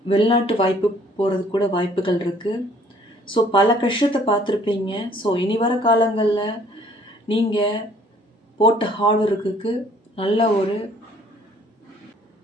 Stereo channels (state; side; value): normal; both; correlation 0.59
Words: வெளிநாட்டு வாய்ப்பு போகிறது கூட வாய்ப்புகள் இருக்குது. ஸோ பல கஷ்டத்தை பார்த்துருப்பீங்க. ஸோ இனி வர காலங்களில் நீங்கள் போட்ட ஹார்ட் ஒர்க்குக்கு நல்ல ஒரு